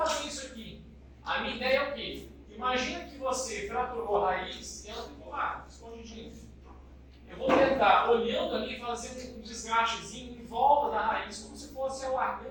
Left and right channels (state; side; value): identical; both; correlation 1.00